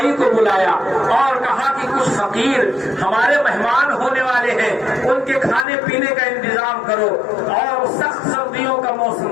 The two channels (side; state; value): right; drops out; at 5.7 s